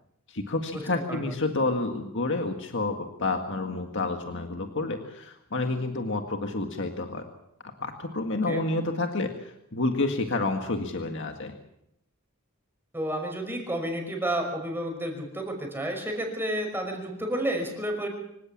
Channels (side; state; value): both; normal; correlation 0.23